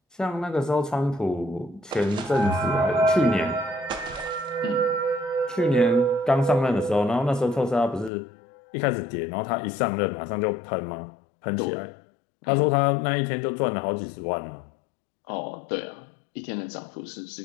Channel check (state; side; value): drops out; right; at 8.1 s